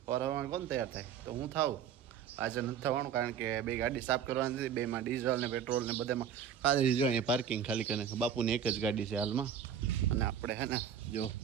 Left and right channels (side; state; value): left; quieter; 8.4 dB